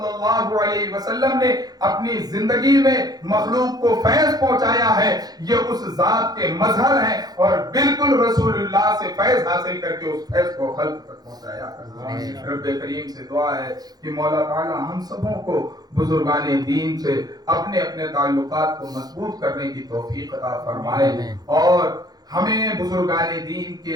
اللہ علیہ وسلم نے اپنی زندگی میں مخلوق کو فیض پہنچایا ہے، یہ اس ذات کے مظہر ہیں، اور بالکل رسول اللہ سے فیض حاصل کر کے اس فیض کو خلق تک پہنچایا کرتے ہیں۔ رب کریم سے دعا ہے کہ مولا تعالی ہم سبوں کو بزرگان دین سے اپنے اپنے تعلقات کو مضبوط کرنے کی توفیق عطا فرمائے، اور ہمیں بزرگان دین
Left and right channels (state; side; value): late; left; 0.19 ms